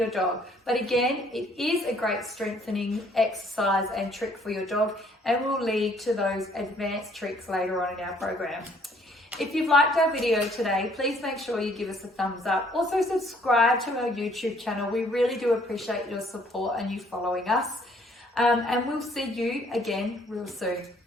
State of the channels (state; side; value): normal; both; correlation 0.63